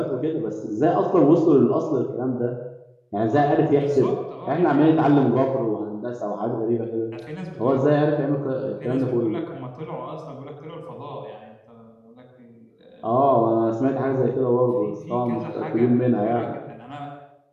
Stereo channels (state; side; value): identical; both; correlation 1.00